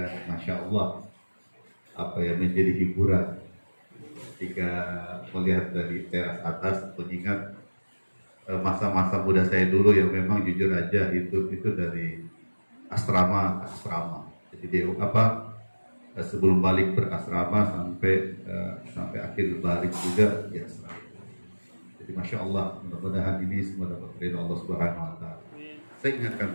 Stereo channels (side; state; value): both; inverted; correlation -1.00